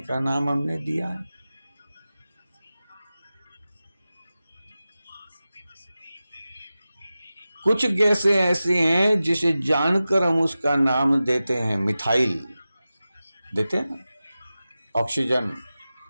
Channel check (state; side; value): inverted; both; correlation -0.95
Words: नाम हमने दिया है। कुछ गैसें ऐसी हैं जिसे जानकर हम उसका नाम देते हैं मिथाइल, देते हैं ना, ऑक्सीजन,